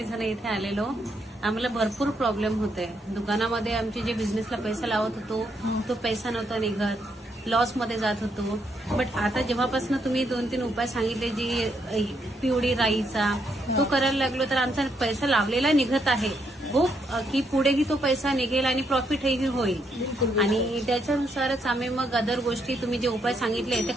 जण इथे आलेलो. आम्हाला भरपूर प्रॉब्लेम होते दुकानामध्ये. आमचे जे बिझनेसला पैसा लावत होतो तो पैसा नव्हता निघत, लॉस मध्ये जात होतो. बट आता जेव्हापासून तुम्ही 2-3 उपाय सांगितले, जी पिवळी राईचा तो करायला लागलो, तर आमचा पैसा लावलेला निघत आहे. हो की पुढेही तो पैसा निघेल आणि प्रॉफिटही होईल. आणि त्याच्यानुसारच आम्ही मग अदर गोष्टी तुम्ही जे उपाय सांगितले ते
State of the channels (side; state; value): both; normal; correlation 0.76